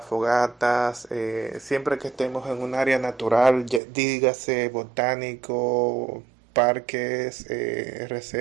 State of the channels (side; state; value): left; drops out; at 3.8 s